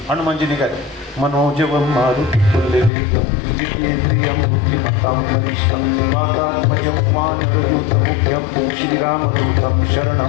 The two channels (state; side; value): drops out; right; at 2.9 s